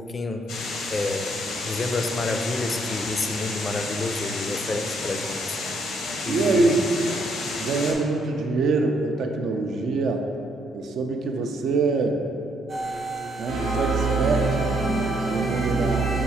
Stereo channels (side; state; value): both; normal; correlation 0.71